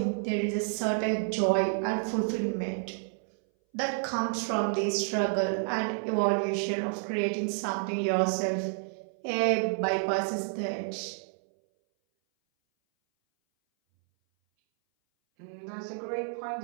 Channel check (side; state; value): left; silent; 58 dB below the other